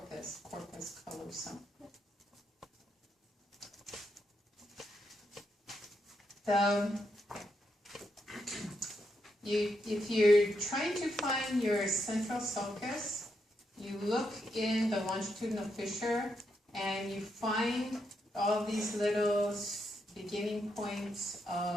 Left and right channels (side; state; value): both; normal; correlation 0.81